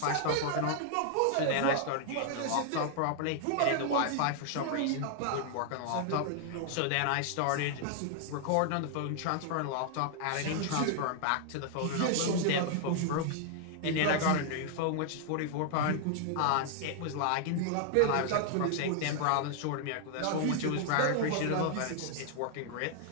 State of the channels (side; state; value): both; different; correlation 0.00